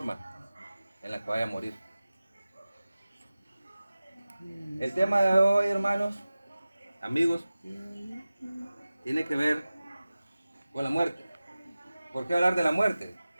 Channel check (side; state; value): both; inverted; correlation -0.96